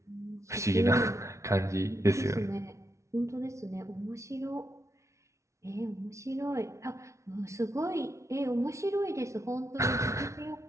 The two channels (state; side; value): late; left; 0.14 ms